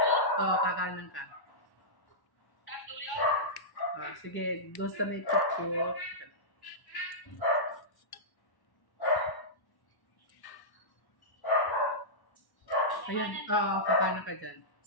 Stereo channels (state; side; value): late; right; 1.1 ms